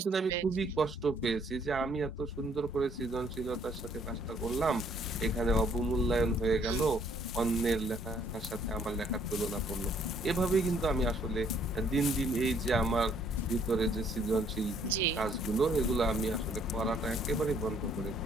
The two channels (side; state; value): both; normal; correlation 0.64